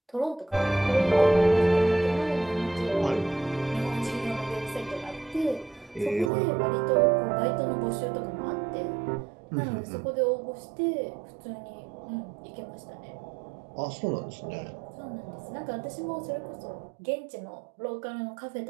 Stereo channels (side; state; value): left; drops out; at 6.3 s